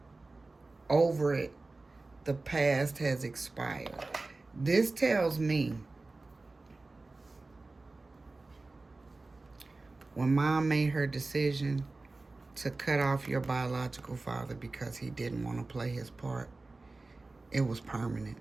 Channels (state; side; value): quieter; left; 3.3 dB